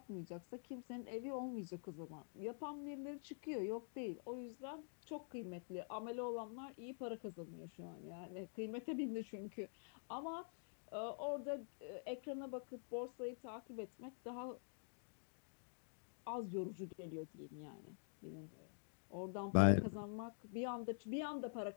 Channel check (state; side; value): silent; right; digital silence